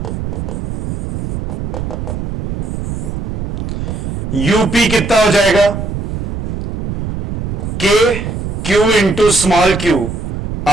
यूपी कितना हो जाएगा, k q into small q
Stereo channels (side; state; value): right; noise; rumble, 4 dB below the sound